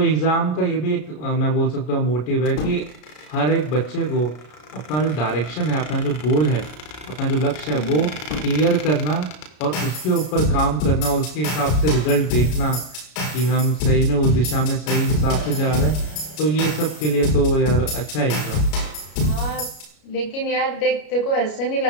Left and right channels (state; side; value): late; right; 33 ms